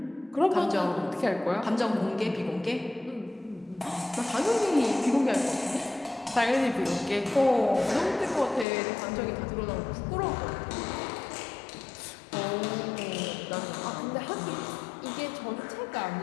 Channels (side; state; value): right; drops out; at 8.7 s